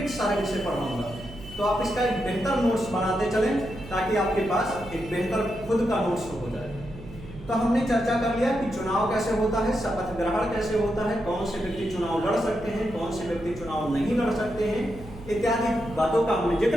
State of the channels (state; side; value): noise; right; hum, 16 dB below the sound